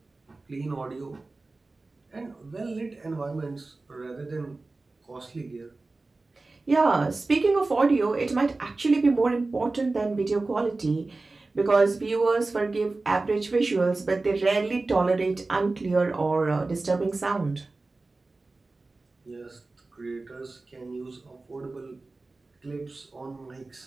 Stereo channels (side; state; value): left; quieter; 3.4 dB